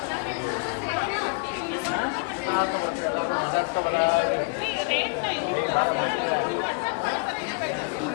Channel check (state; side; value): quieter; right; 35.7 dB